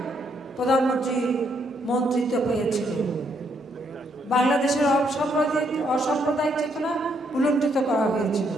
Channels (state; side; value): normal; both; correlation 0.73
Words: প্রধানমন্ত্রী মন্ত্রিত্ব পেয়েছিল। বাংলাদেশের অসাম্প্রদায়িক চেতনা উলণ্ঠিত করা হয়েছিল।